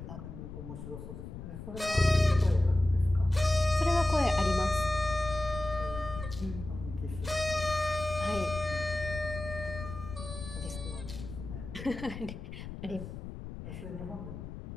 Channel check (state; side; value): noise; left; rumble, 10 dB below the sound